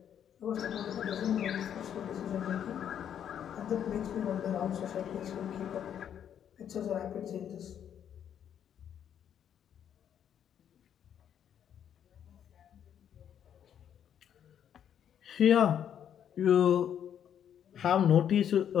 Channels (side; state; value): right; quieter; 9.3 dB